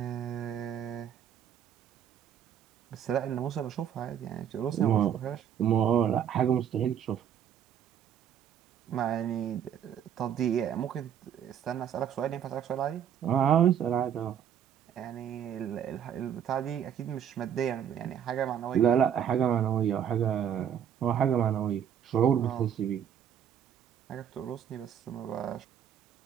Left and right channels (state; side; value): quieter; left; 9.0 dB